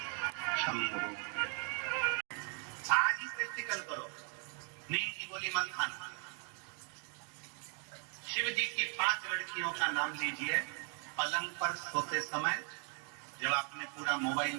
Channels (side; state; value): left; quieter; 37.7 dB